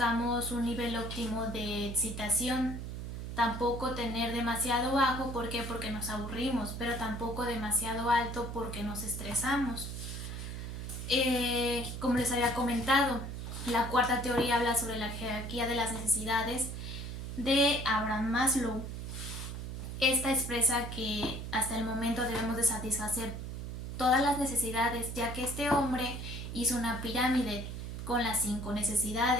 un nivel óptimo de excitación, tampoco tener demasiado bajo, ¿por qué? Porque nos aburrimos, pero tampoco demasiado alto porque nos estresamos. Como les había comentado, la cuarta teoría habla sobre la jerarquía de las necesidades de Abraham Maslow. Esta expresa que hasta el momento debemos de satisfacer todas las necesidades, ya que este hombre hizo una pirámide con las 5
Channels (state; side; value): noise; right; hum, 6 dB below the sound